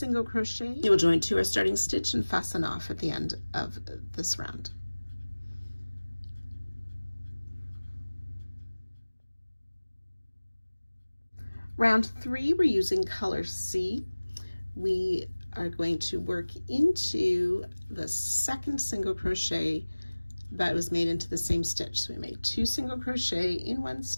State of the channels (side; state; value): both; inverted; correlation -1.00